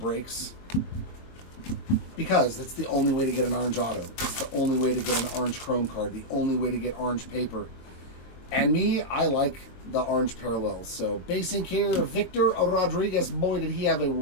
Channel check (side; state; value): right; late; 23 ms